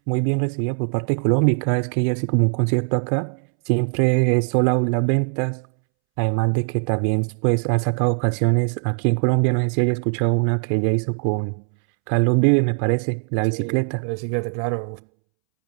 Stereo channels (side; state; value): left; silent; 65 dB below the other